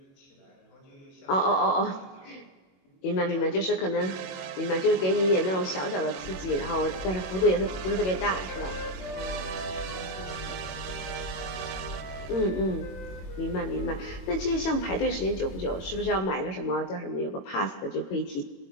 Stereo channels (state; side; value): late; right; 22 ms